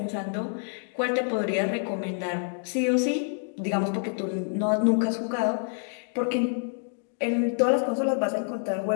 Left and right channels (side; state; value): right; silent; digital silence